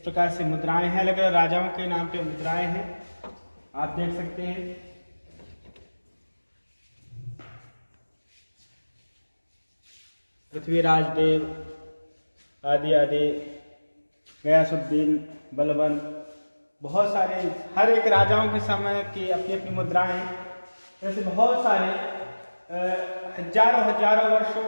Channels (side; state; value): both; inverted; correlation -1.00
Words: से मुद्राएं हैं, अलग अलग राजाओं के नाम पे मुद्राएं हैं, आप देख सकते हैं। पृथ्वीराज देव आदि आदि, गयासुद्दीन, बलबन, बहुत सारे हर एक राजाओं के समय की अपनी अपनी मुद्राएं हैं। जैसे बहुत सारे हजारों वर्ष